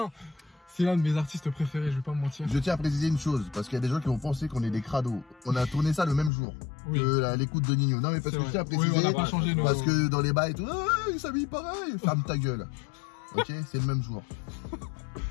C'est l'un de mes artistes préférés, je vais pas me mentir. Je tiens à préciser une chose, parce qu'il y a des gens qui vont penser qu'on est des crados. On a tourné ça le même jour que l'écoute de Nino. Non mais parce que je tiens à préciser, on n'a pas changé nos... parce que dans les bails et tout, il s'habille pareil. Ferme ta gueule. Ok, c'est le même jour.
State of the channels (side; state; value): right; drops out; at 6.3 s